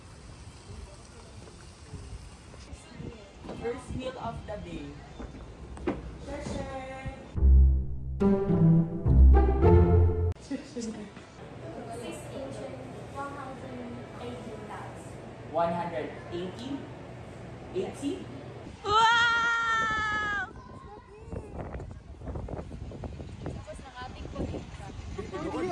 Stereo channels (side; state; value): both; identical; correlation 1.00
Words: First meal of the day. $180? 80? Wow!